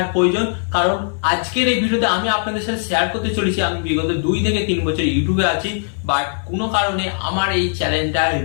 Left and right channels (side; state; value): right; silent; 66 dB below the other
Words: প্রয়োজন। কারণ আজকের এই ভিডিওতে আমি আপনাদের সাথে শেয়ার করতে চলেছি আমি বিগত 2 থেকে 3 বছর ইউটিউবে আছি, বাট কোনো কারণে আমার এই চ্যানেলটা